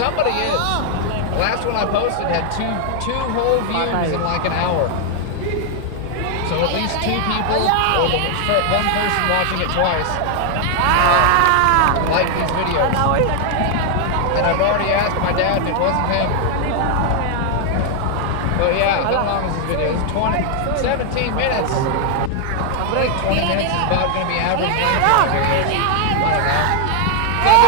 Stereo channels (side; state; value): both; different; correlation 0.00